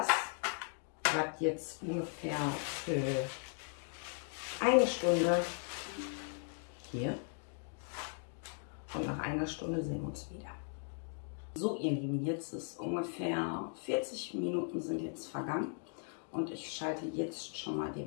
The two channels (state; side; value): silent; right; 53 dB below the other